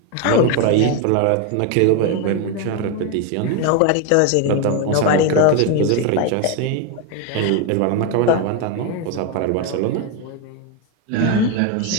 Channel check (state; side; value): different; both; correlation 0.02